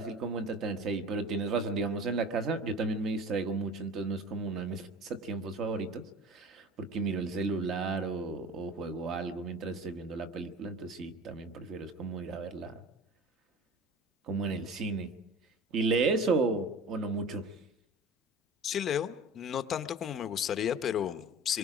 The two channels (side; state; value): both; normal; correlation 0.38